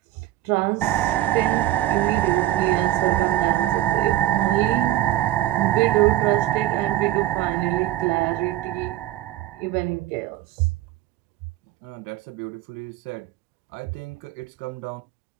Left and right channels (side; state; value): left; quieter; 14.1 dB